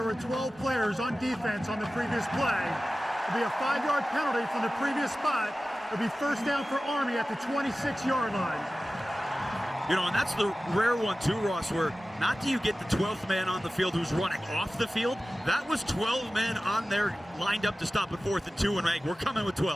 were 12 players on defense on the previous play. It'll be a 5-yard penalty from the previous spot. It'll be first down for Army at the 26-yard line. You know, and that's the rare one too, Ross, where not do you get the 12th man on the field who's running off the field. That was 12 men on there lined up to stop at 4th and 2, and we're coming with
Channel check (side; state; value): both; normal; correlation 0.96